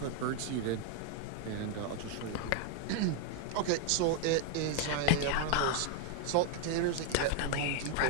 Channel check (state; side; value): different; both; correlation 0.00